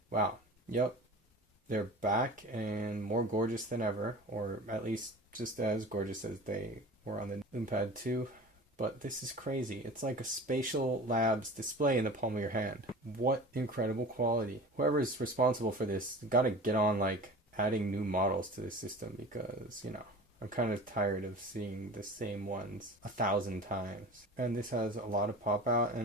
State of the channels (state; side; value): normal; both; correlation 0.37